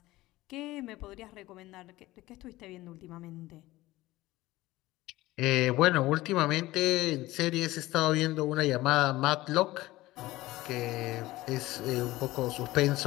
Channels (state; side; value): quieter; right; 17.9 dB